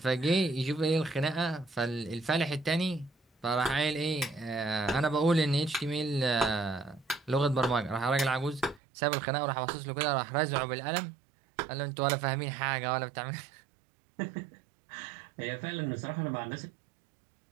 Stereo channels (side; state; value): left; drops out; at 8.8 s